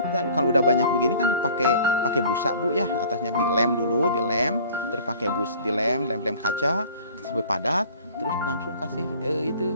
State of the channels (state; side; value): inverted; both; correlation -0.49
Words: kalau udah banyak begini kan pakai busa Bu ya, atasnya dilem dulu, terus pakai lem kaca sampai padat, terus langsung kasih